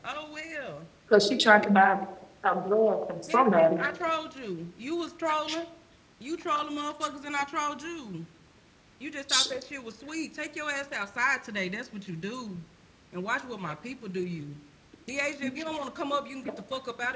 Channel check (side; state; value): both; identical; correlation 1.00